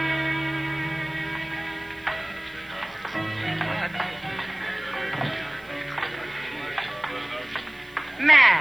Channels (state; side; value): noise; right; hiss, 28 dB below the sound